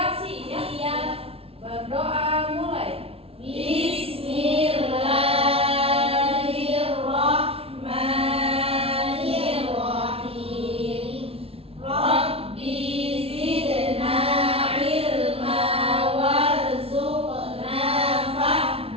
berdoa mulai. Bismillahirrahmanirrahim. Rabbi zidna ilma warzuqna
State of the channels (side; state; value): left; late; 0.28 ms